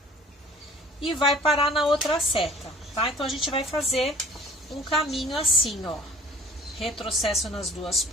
e vai parar na outra seta, tá? Então, a gente vai fazer um caminho assim, ó. Retrocesso nas 2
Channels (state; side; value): normal; both; correlation 0.50